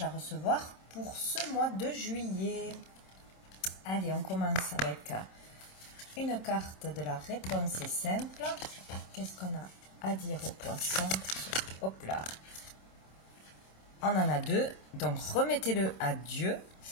à recevoir pour ce mois de juillet. Allez, on commence avec une carte de la réponse est simple. Qu'est-ce qu'on a à dire aux poissons? Hop là. On en a deux, donc remettez-le à Dieu.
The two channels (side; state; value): right; late; 26 ms